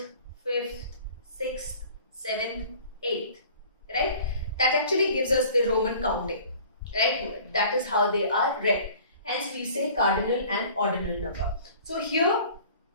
fifth, sixth, seventh, eighth, right? That actually gives us the Roman counting, right? That is how they are read. Hence we say cardinal and ordinal number. So here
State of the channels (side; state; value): both; inverted; correlation -0.48